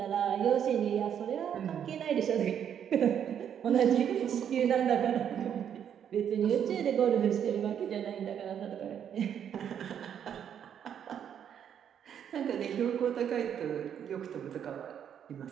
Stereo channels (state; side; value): quieter; left; 8.8 dB